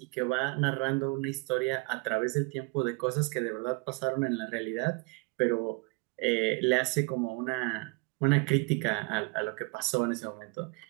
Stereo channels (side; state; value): left; quieter; 29.4 dB